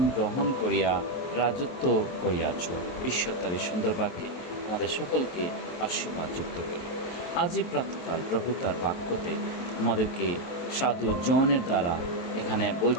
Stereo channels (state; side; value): late; right; 23 ms